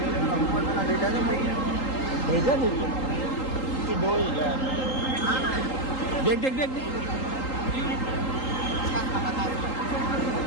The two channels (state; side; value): late; right; 3.8 ms